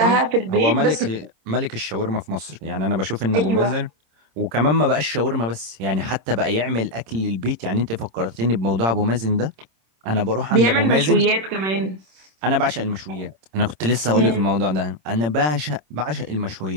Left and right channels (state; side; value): late; left; 26 ms